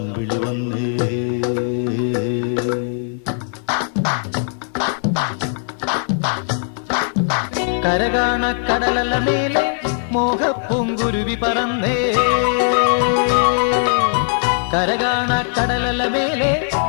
വന്നേ കരകാണ കടലല മേലെ മോഹപ്പൂങ്കുരുവി പറന്നേ കരകാണ കടലല മേലെ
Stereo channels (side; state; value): right; silent; digital silence